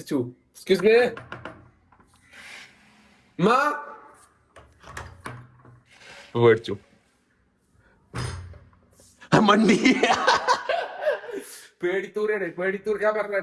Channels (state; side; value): identical; both; correlation 1.00